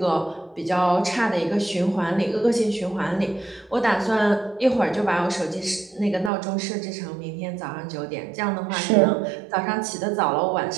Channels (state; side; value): drops out; left; at 6.3 s